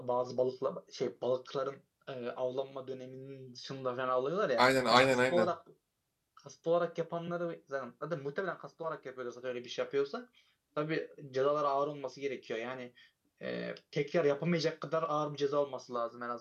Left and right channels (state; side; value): identical; both; correlation 1.00